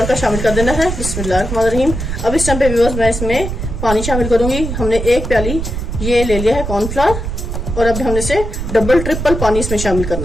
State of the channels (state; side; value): noise; right; rumble, 4 dB below the sound